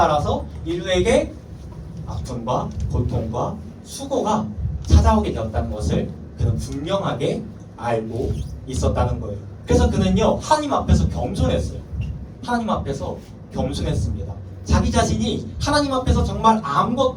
인류에게 아픔과 고통과 수고가 찾아오게 되었다는 것을 그는 분명하게 알고 있었다는 거예요. 그래서 그는요, 하나님 앞에서 겸손했어요. 하나님 앞에서 겸손했습니다. 자기 자신이 하나님 앞에서 정말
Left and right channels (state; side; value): identical; both; correlation 1.00